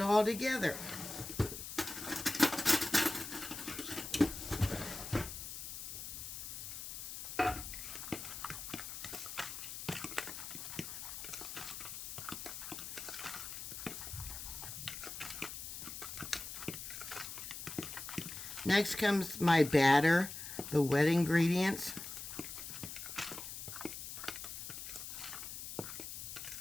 together. Next comes my batter, the wet ingredients.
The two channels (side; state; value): left; noise; hiss, 8 dB below the sound